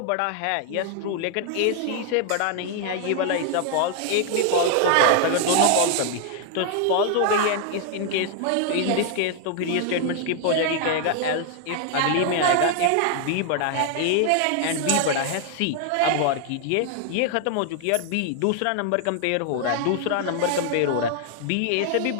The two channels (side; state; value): both; different; correlation 0.00